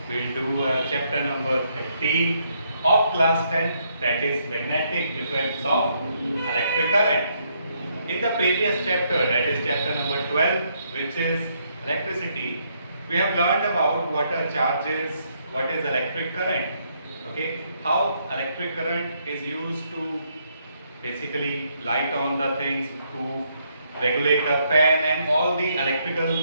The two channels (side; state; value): both; inverted; correlation -0.74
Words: we'll do chapter number 13 of class 10, that is magnetic effects of electric current. In the previous chapter, that is chapter number 12, which is electricity, we have learned about what are charges, what is electric current, okay, how electric current is used to basically light on the things, to regulate a fan and all the